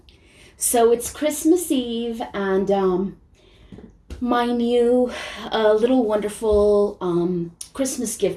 So it's Christmas Eve and my new little wonderful Christmas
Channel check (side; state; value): both; identical; correlation 1.00